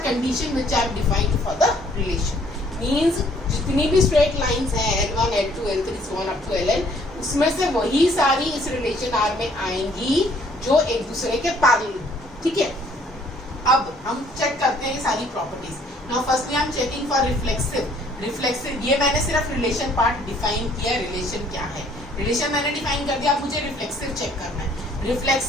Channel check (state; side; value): normal; both; correlation 0.61